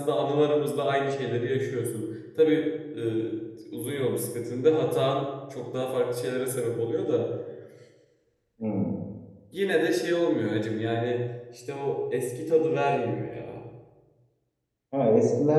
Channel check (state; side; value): identical; both; correlation 1.00